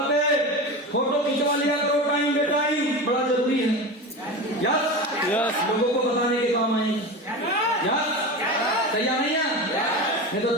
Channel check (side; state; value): both; normal; correlation 0.26